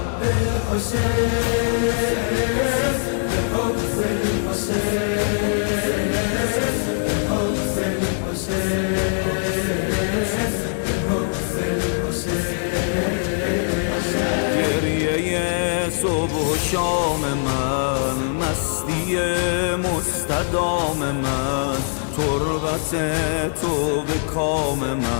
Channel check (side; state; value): right; silent; digital silence